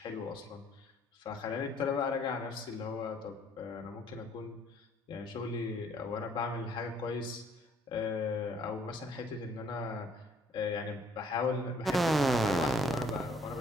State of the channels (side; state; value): both; normal; correlation 0.62